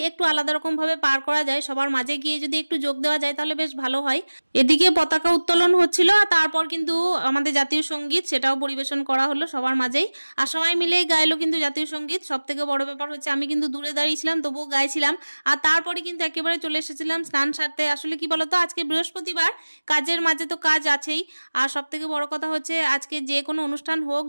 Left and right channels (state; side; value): inverted; both; correlation -1.00